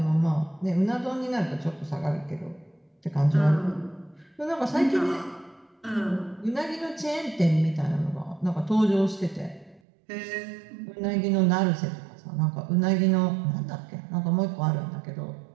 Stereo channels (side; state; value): left; drops out; at 9.8 s